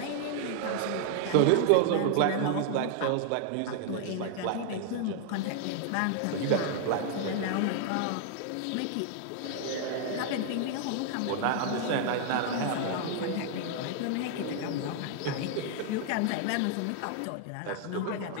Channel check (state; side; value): different; both; correlation 0.00